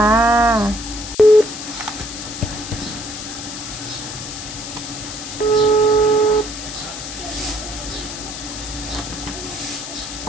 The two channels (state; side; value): noise; left; hiss, 9 dB below the sound